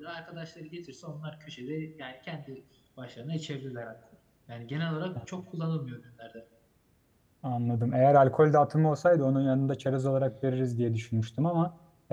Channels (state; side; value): identical; both; correlation 1.00